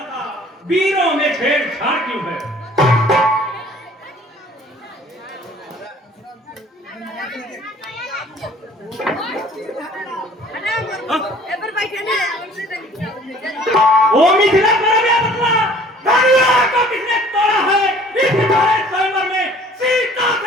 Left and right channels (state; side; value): normal; both; correlation 0.53